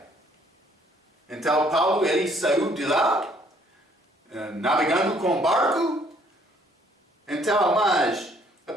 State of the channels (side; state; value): both; normal; correlation 0.63